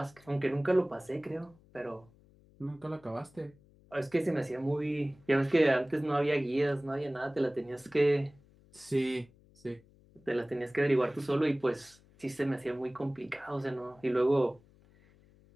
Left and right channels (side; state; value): left; noise; hum, 28 dB below the sound